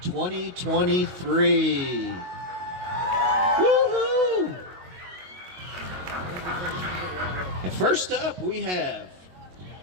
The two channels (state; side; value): late; left; 22 ms